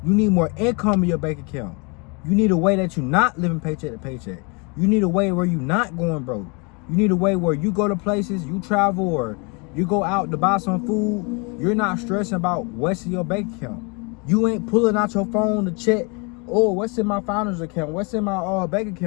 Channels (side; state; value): right; quieter; 31.8 dB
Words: You need more income in your bank account. You need a way that you're not living paycheck to paycheck. You need a way where you're not going broke. You need a way where you go to places, you travel, or you go out to buy some food. You're not stressing about what's in your bank account. You ain't pulling out your phone to check, oh, what's in my founder's account? What's in my bank